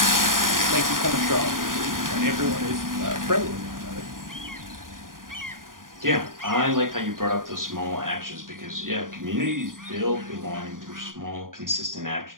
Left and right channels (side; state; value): left; late; 0.90 ms